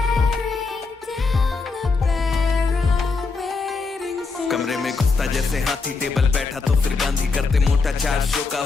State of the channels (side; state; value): right; quieter; 4.3 dB